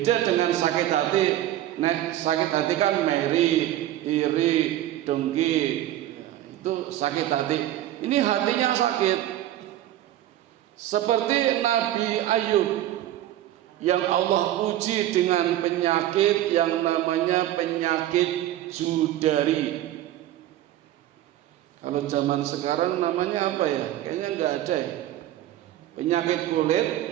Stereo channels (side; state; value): left; quieter; 13.4 dB